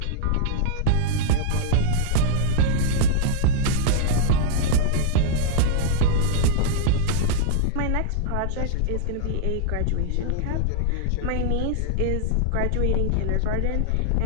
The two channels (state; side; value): different; both; correlation -0.01